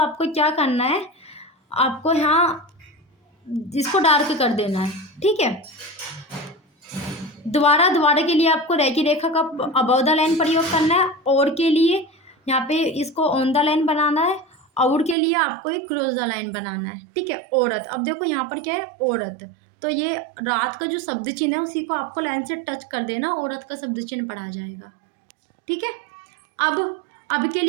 क्या करना है? आपको यहाँ इसको डार्क कर देना है। ठीक है। दोबारा के लिए आपको रे की रेखा का अबव द लाइन प्रयोग करना है, और के लिए यहाँ पे इसको ऑन द लाइन बनाना है, और के लिए आपको एक क्रॉस द लाइन बनाना है। ठीक है। औरत, अब देखो यहाँ पर क्या है? औरत, तो ये रात का जो शब्द चिन्ह है उसी को आपको लाइन से टच कर देना, औरत का शब्द चिन्ह पढ़ा जाएगा। ठीक है। अब के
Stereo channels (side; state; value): left; drops out; at 15.2 s